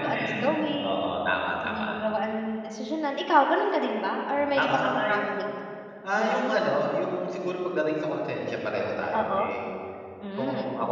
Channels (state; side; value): identical; both; correlation 1.00